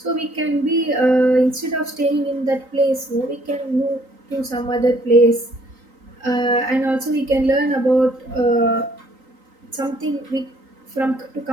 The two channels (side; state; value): left; late; 3.9 ms